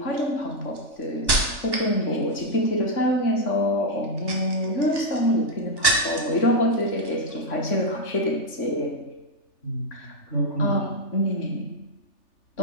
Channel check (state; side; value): late; right; 3.4 ms